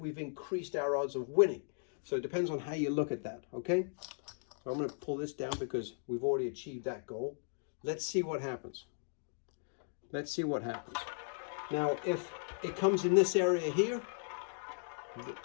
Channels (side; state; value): right; silent; digital silence